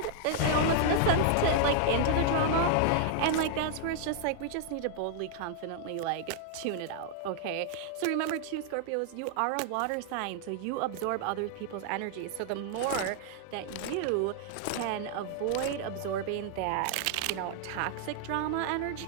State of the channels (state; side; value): different; both; correlation 0.00